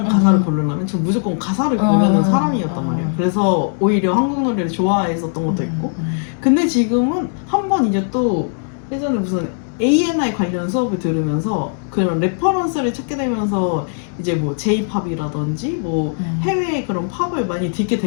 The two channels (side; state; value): right; silent; digital silence